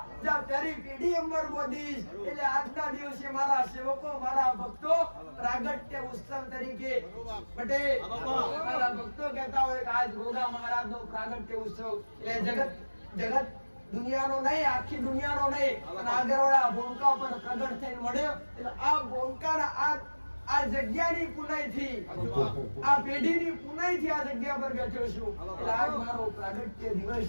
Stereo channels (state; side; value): inverted; both; correlation -1.00